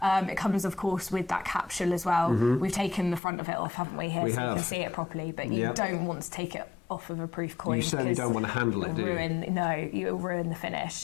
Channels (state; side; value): drops out; right; at 3.2 s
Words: It comes, of course, with that capsule as well. We've taken the front of it off, haven't we, here, you can see it properly, but you don't want to take it off of a proof coin. You certainly don't want to handle it, do you? No, you'll ruin the finish.